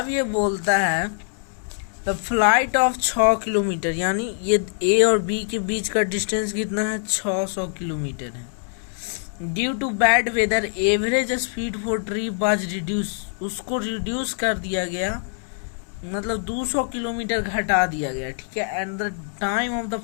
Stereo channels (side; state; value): right; silent; 63 dB below the other